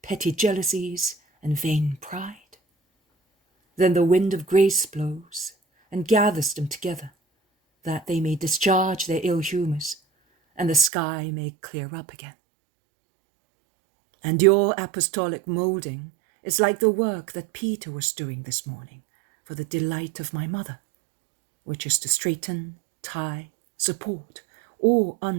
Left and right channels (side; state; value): left; drops out; at 10.9 s